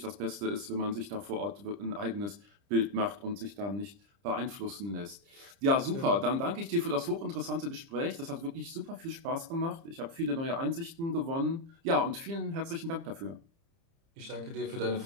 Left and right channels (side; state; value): left; late; 30 ms